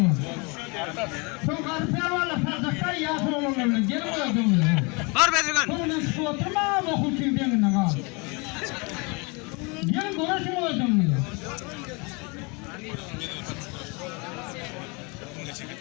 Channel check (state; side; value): quieter; right; 29.8 dB